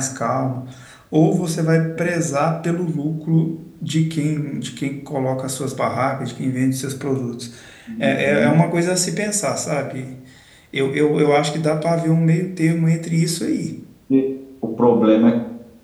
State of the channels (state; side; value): identical; both; correlation 1.00